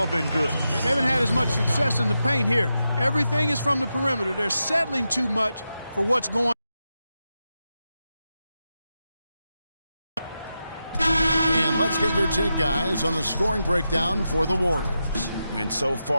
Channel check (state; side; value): inverted; both; correlation -0.89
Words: been good. They haven't had as much success in the paint here. Everything is from the perimeter. They're settling too much for what's going on. And let's get your take, guys, on the scoring breakdown for the Warriors. And so